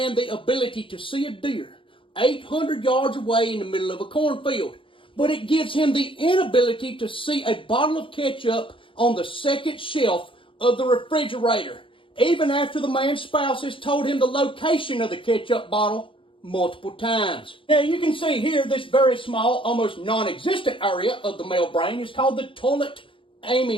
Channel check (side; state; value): right; late; 0.25 ms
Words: the ability to see a deer 800 yards away in the middle of a cornfield. But it gives him the inability to see a bottle of ketchup on the second shelf of the refrigerator, even after the man's spouse has told him the location of the ketchup bottle multiple times. Now you can see here this very small, almost non-existent area of the male brain is called the toilet